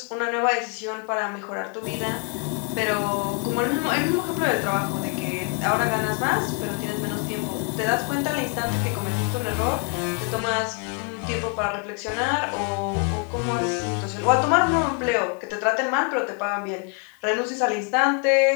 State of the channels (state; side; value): quieter; right; 39.6 dB